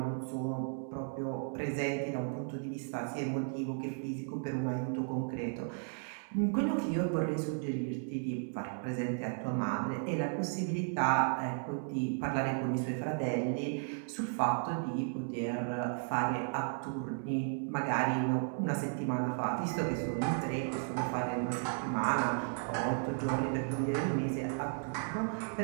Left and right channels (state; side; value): silent; left; 55 dB below the other